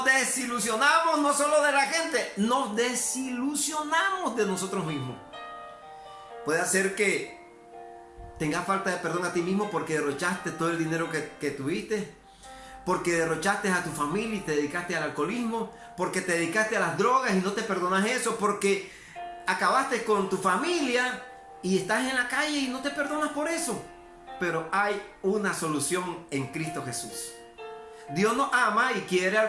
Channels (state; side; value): identical; both; correlation 1.00